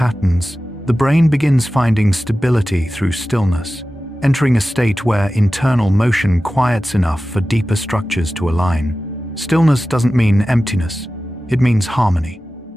the brain begins finding stability through stillness, entering a state where internal motion quiets enough for deeper structures to align. Stillness doesn't mean emptiness, it means harmony,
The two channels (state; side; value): normal; both; correlation 0.95